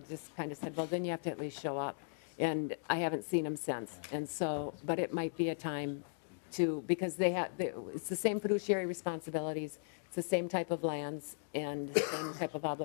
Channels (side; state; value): right; silent; digital silence